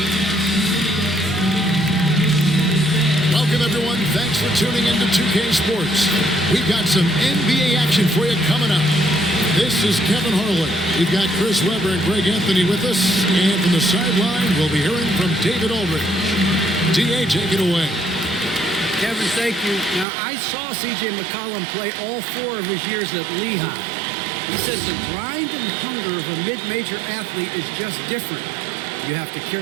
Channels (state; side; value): drops out; left; at 20.1 s